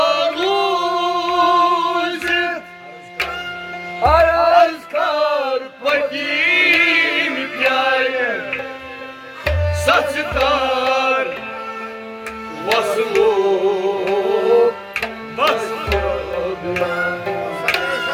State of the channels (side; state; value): both; identical; correlation 1.00